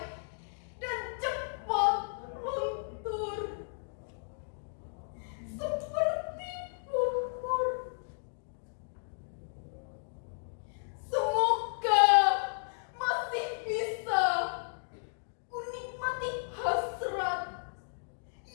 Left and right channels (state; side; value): silent; right; digital silence